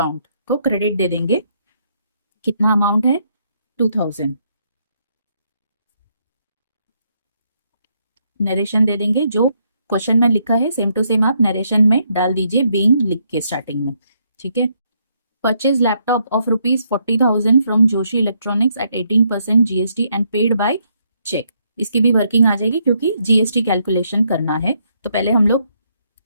को क्रेडिट दे देंगे। कितना अमाउंट है 2,000। नरेशन दे देंगे, जो क्वेश्चन में लिखा है सेम टू सेम आप नरेशन में डाल दीजिए, बीइंग लिख के स्टार्टिंग में। ठीक है, purchase laptop of rupees 40,000 from Joshi electronics at 18% GST and paid by cheque. इसकी भी वर्किंग आ जाएगी क्योंकि GST कैलकुलेशन करना है, तो पहले हम लोग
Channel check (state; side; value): inverted; both; correlation -0.75